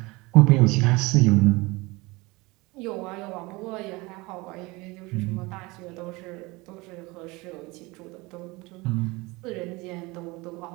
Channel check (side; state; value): left; quieter; 23.6 dB